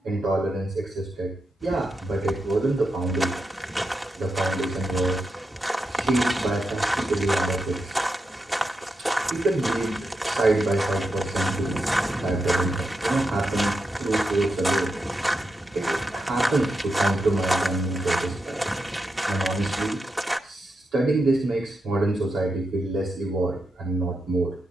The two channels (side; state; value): both; normal; correlation 0.86